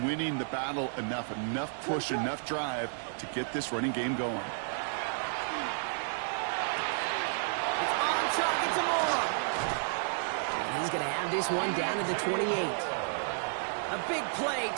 winning the battle enough push, enough drive to get this running game going. It's on target to Moore. And he's going to have this one down to the 28. A big play,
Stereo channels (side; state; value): left; silent; 57 dB below the other